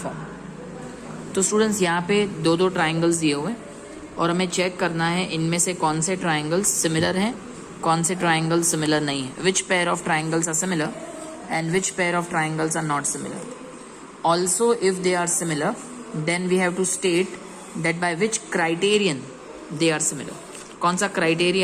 तो students यहाँ पे दो दो triangles दिए हुए हैं और हमें चेक करना है इनमें से कौन से ट्राइंगल्स सिमिलर हैं, कौन से ट्राइंगल्स सिमिलर नहीं है. Which pair of triangles are similar and which pair of triangles are not similar. Also, if they are similar, then we have to state that by which criterion they are similar. कौन सा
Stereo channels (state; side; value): identical; both; correlation 1.00